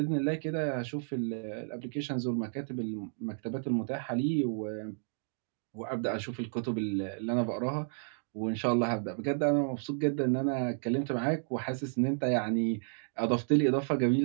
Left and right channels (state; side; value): silent; left; digital silence